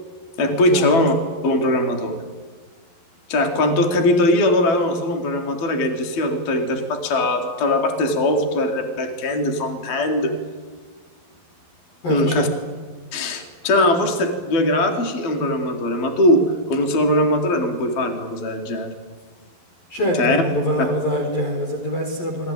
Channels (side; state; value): right; late; 11 ms